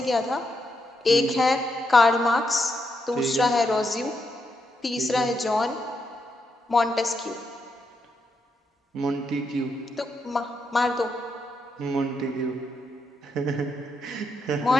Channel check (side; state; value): both; normal; correlation 0.81